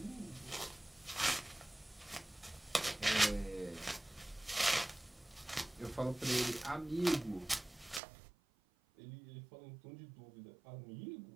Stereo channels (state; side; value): drops out; left; at 8.0 s